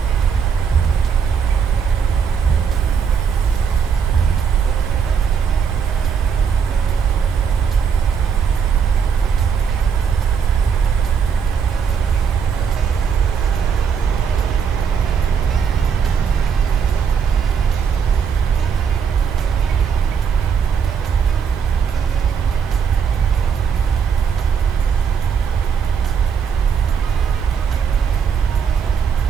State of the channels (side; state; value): left; quieter; 6.7 dB